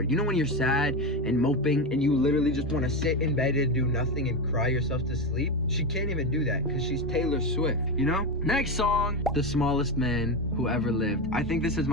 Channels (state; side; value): normal; both; correlation 0.15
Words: You know when you're sad and moping and you literally just want to sit in bed and do nothing and cry yourself to sleep? She can't even do that because she's Taylor Swift, you know? Next song, The Smallest Man Who Ever Lived. I think this is